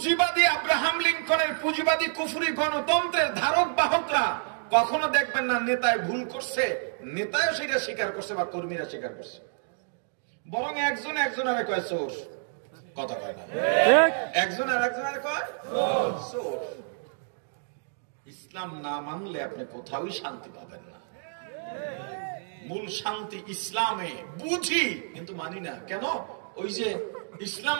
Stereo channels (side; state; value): left; silent; digital silence